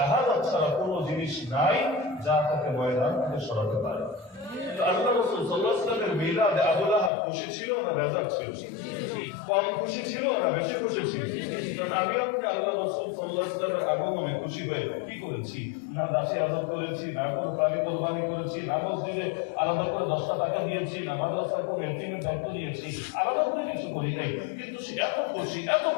ছাড়া কোনো জিনিস নাই যা তাকে ময়দান থেকে সরাতে পারে। আল্লাহ রাসূল সাল্লাল্লাহু আলাইহি ওয়াসাল্লামের মিলাদে আবু লাহাব খুশি ছিল না বেজার ছিল? কম খুশি ছিল না বেশি খুশি ছিল? কারণ আমি আপনি আল্লাহ রাসূল সাল্লাল্লাহু আলাইহি ওয়াসাল্লামের আগমনে খুশি হয়ে কি করেছি? না দাসী আদর করেছি, না কোনো প্রাণী কোরবানি করেছি, না মসজিদে আলাদা করে 10টা টাকা দিয়েছি, না মাদ্রাসার কোনো এতিমের দায়িত্ব দিয়েছি, আলাদা করে কিছু করি নাই। কিন্তু সে এত খুশি, এত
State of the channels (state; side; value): drops out; right; at 7.1 s